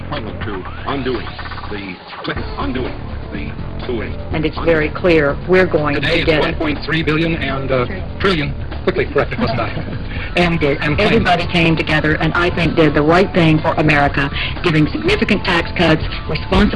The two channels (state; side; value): identical; both; correlation 1.00